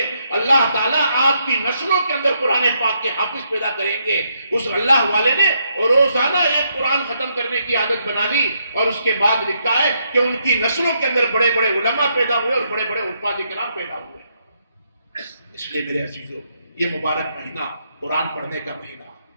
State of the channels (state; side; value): inverted; both; correlation -0.77